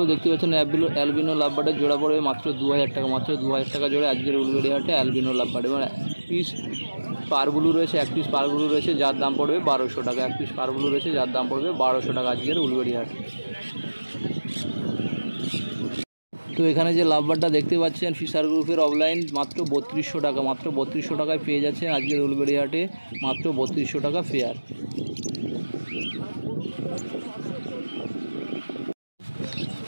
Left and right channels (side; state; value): both; inverted; correlation -1.00